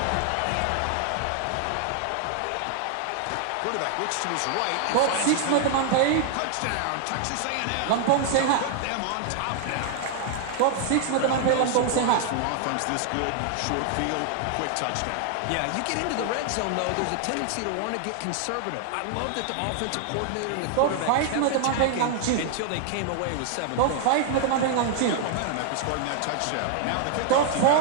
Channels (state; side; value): different; both; correlation 0.00